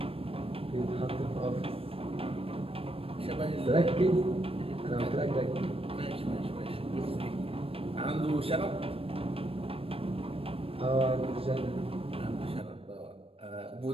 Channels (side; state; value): left; late; 0.28 ms